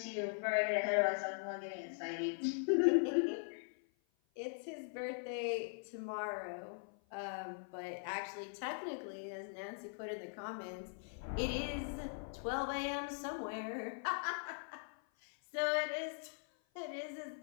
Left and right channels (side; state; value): right; silent; 50 dB below the other